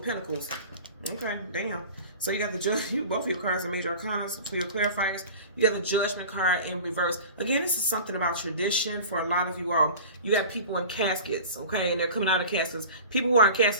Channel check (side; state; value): both; inverted; correlation -0.38